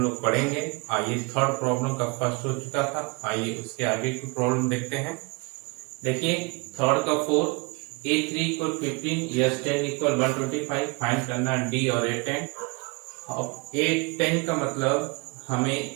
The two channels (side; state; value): left; quieter; 29.0 dB